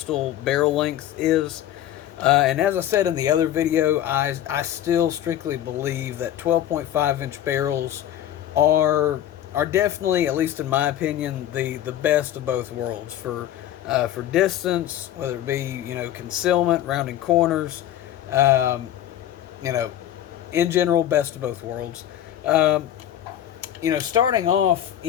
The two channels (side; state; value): right; quieter; 11.7 dB